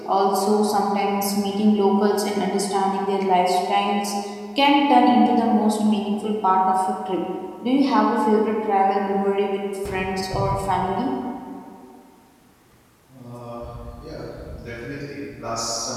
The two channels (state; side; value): identical; both; correlation 1.00